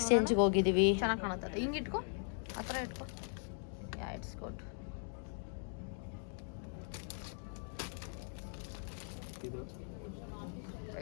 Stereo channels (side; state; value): right; silent; 52 dB below the other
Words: ಹೋಗಿದ್ದೀವಿ. ಚೆನ್ನಾಗಿ ಕಾಣುತ್ತದೆ, ಹಿಂಗೆ ಇಟ್ಕೊ, ಆ ಥರ ಇಟ್ಕೊ. It's good.